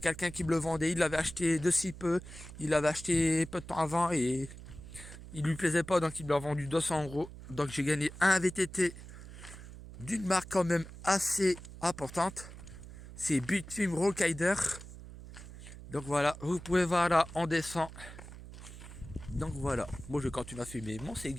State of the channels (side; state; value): right; noise; hum, 14 dB below the sound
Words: qui me le vendait, il l'avait acheté de si peu, il l'avait acheté peu de temps avant et il lui plaisait pas, donc il me l'a vendu 200 €. Donc j'ai gagné un VTT d'une marque quand même assez importante, c'est Bitfilm Rollrider. Donc voilà, vous pouvez voir là, on descend. Donc voilà, moi je continue à fumer mon